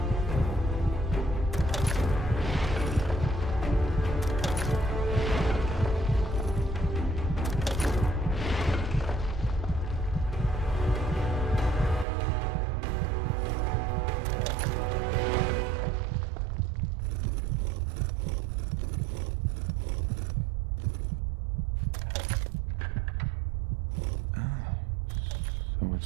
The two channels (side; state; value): left; drops out; at 12.1 s